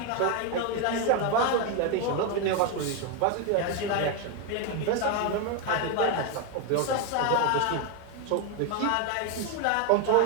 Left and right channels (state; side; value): different; both; correlation 0.01